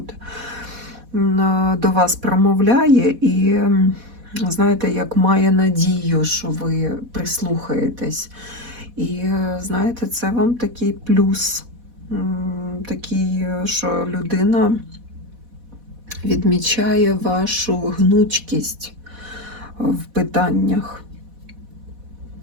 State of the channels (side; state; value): left; late; 4.1 ms